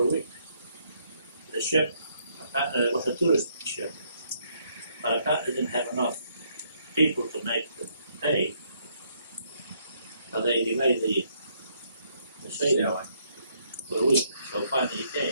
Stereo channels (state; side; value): inverted; both; correlation -0.71